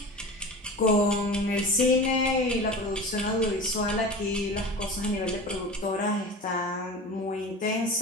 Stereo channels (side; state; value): both; normal; correlation 0.33